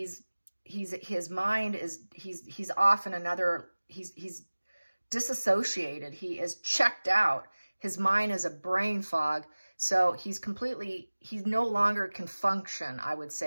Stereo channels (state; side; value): inverted; both; correlation -1.00